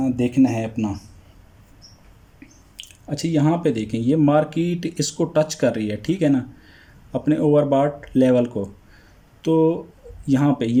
है अपना। अच्छा, यहाँ पे देखें, ये मार्केट इसको टच कर रही है, ठीक है ना, अपने ओवरबॉट लेवल को। तो यहाँ पे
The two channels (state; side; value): identical; both; correlation 1.00